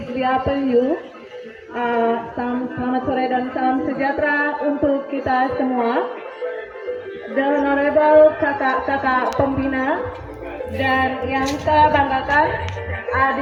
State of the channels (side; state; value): both; identical; correlation 1.00